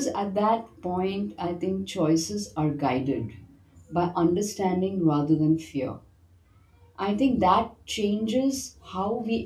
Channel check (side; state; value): both; identical; correlation 1.00